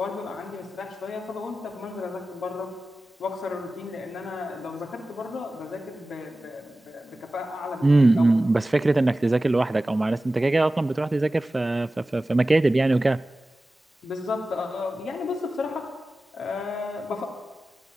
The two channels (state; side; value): normal; both; correlation 0.95